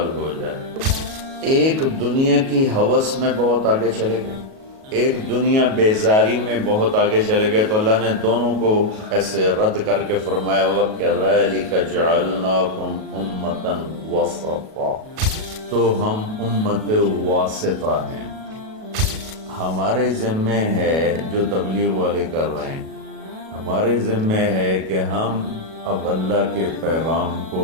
ہو جائے۔ ایک دنیا کی ہوس میں بہت آگے چلے گئے، ایک دنیا بیزاری میں بہت آگے چلے گئے، تو اللہ نے دونوں کو ایسے رد کر کے فرمایا وَكَذَلِكَ جَعَلْنَاكُمْ أُمَّةً وَسَطًا، تو ہم امت واسطہ ہیں۔ ہمارے ذمے ہے جو تبلیغ والے کر رہے ہیں، ہمارے ذمے ہے کہ ہم اب اللہ کے پیغام کو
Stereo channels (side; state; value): left; late; 37 ms